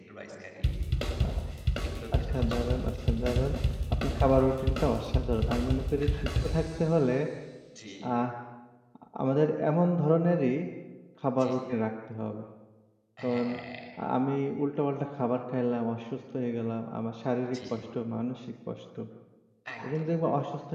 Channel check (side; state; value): both; identical; correlation 1.00